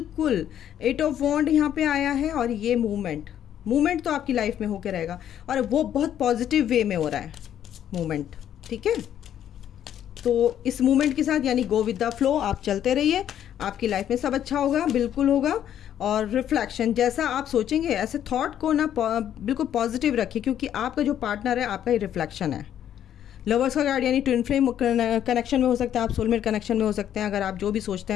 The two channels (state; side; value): quieter; right; 10.4 dB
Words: 8 ऑफ वॉन्ड यहाँ पे आया है और ये मूवमेंट तो आपकी लाइफ में होकर रहेगा और वो बहुत पॉजिटिव वे में हो रहा है मूवमेंट। ठीक है, तो इस मूवमेंट के साथ यानी गो विद द फ्लो, आप चलते रहिए, आपकी लाइफ में सब अच्छा होगा, बिल्कुल होगा। और रिफ्लेक्शन, जैसा आप सोचेंगे ऐसे थॉट को ना बिल्कुल पॉजिटिव रखिए, क्योंकि आपका जो पार्टनर है आपका ही रिफ्लेक्शन है। लवर्स का कार्ड यानी ट्विन फ्लेम कनेक्शन में हो सकता है, आप सोलमेट कनेक्शन में हो सकते हैं। अगर आप जो भी सोचते